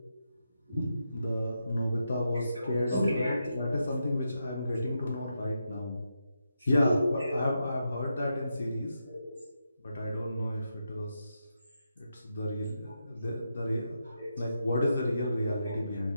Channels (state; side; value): inverted; both; correlation -0.85